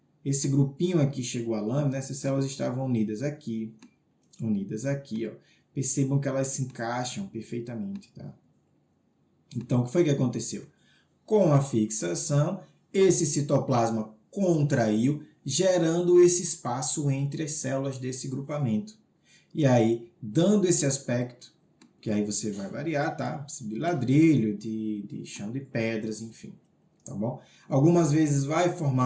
esse grupinho aqui chegou à lâmina, essas células estavam unidas aqui. Ó. Percebam que elas se encaixam perfeitamente. Tá? Então, o que foi que aconteceu? Com a fixação, esse citoplasma contraiu, gerando esse espaço entre as células desse grupamento. E aí, dando esse aspecto, que aí você vai variar, tá? De ladrilho, de chão de pedras, enfim. Tá bom? Algumas vezes vai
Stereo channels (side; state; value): both; identical; correlation 1.00